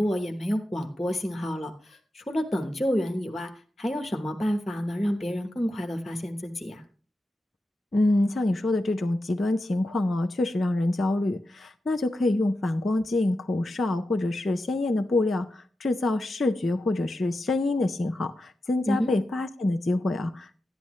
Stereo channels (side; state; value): both; normal; correlation 0.90